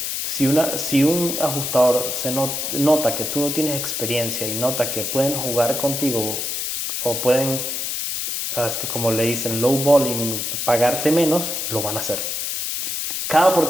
si un ajustador nota que tú no tienes experiencia y nota que pueden jugar contigo o pueden, como le dicen, low balling, pagarte menos, lo van a hacer. Cada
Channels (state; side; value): noise; left; hiss, 2 dB below the sound